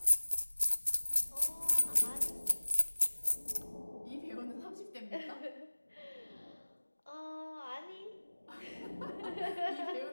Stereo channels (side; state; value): both; inverted; correlation -1.00